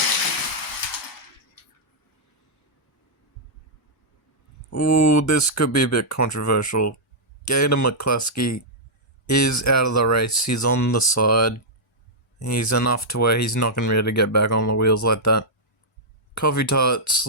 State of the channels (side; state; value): both; normal; correlation -0.09